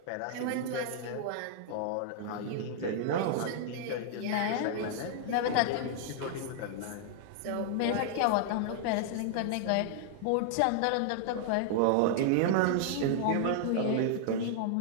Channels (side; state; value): both; different; correlation -0.01